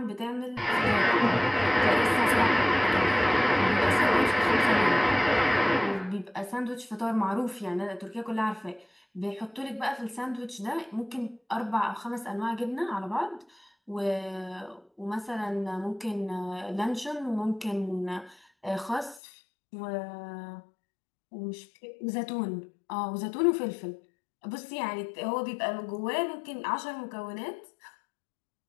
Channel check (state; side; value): drops out; right; at 19.2 s